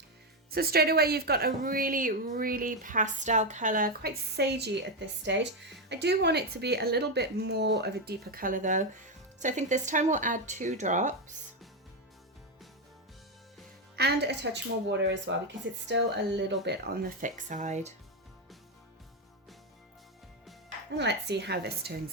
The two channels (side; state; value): both; normal; correlation 0.07